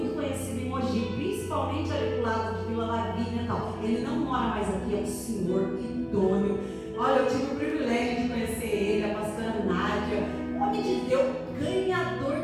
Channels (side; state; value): both; identical; correlation 1.00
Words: conhecido em Mogi, principalmente ali do lado de Vila Lavínia e tal. Ele não mora mais aqui, é um senhor idôneo. Olha, eu tive o privilégio de conhecer ele, a pastora Nádia, homem de Deus, ganhador